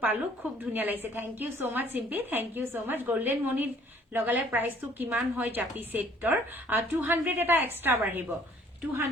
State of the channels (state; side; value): normal; both; correlation 0.58